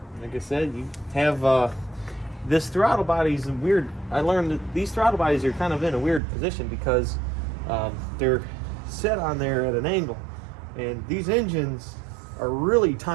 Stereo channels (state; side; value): drops out; left; at 6.2 s